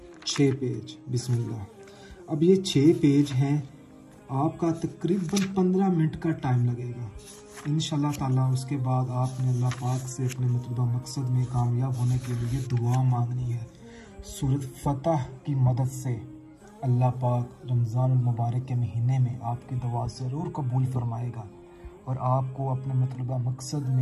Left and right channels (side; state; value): both; identical; correlation 1.00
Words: 6 पेज। बिस्मिल्लाह। अब ये 6 पेज हैं, आपका तकरीबन 15 मिनट का टाइम लगेगा इंशाल्लाह ताला। उसके बाद आपने अल्लाह पाक से अपने मतलूबा मकसद में कामयाब होने के लिए दुआ मांगनी है। सूरत फतह की मदद से अल्लाह पाक रमज़ान मुबारक के महीने में आपकी दुआ ज़रूर कबूल फरमाएगा और आपको अपने मतलूबा मकसद